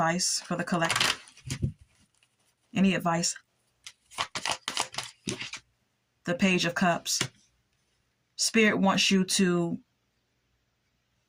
for the collective? Any advice? The Page of Cups. Spirit wants you to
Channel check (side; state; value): both; identical; correlation 1.00